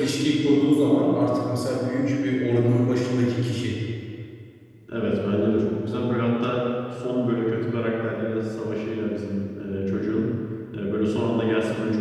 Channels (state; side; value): identical; both; correlation 1.00